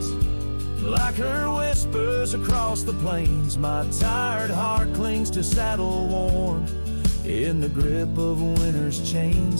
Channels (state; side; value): inverted; both; correlation -1.00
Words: like her whispers across the plains. My tired heart clings to saddle worn, in the grip of winter's